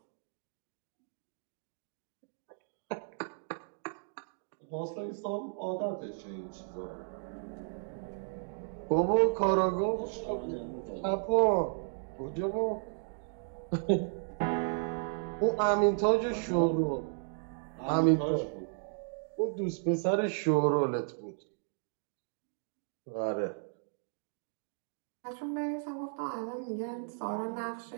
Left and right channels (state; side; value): silent; left; digital silence